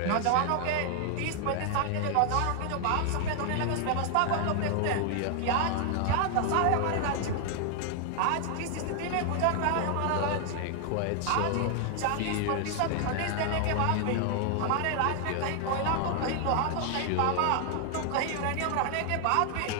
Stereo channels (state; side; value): different; both; correlation 0.00